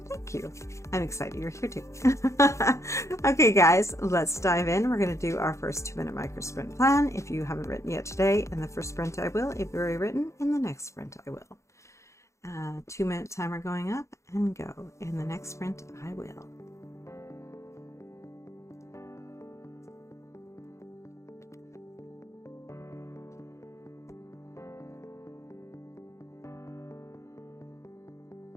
you. I'm excited you're here too. Okay, guys, let's dive in. We're going to do our first 2-minute micro sprint plan. If you haven't written yet today, in the first sprint I will. If you've already written, in the next sprint I will. 2-minute timer going up and go. In the next sprint I will.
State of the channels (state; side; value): late; right; 0.14 ms